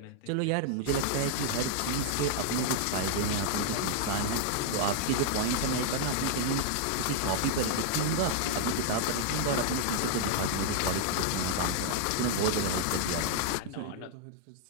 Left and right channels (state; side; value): different; both; correlation -0.01